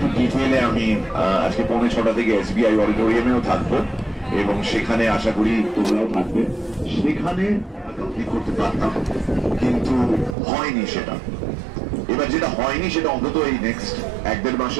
ডিটেইলে আমি আজকে 6:45 থেকে SBI অডিটোরিয়ামেও থাকবো, এবং সেখানে আশা করি তোমরাও থাকবে। সেখানে কমপ্লিট করতে পারতাম, কিন্তু হয়নি সেটা। এবার যেটা হয়নি সেটা অন্তত এই নেক্সট 1-1.5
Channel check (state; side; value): drops out; left; at 10.4 s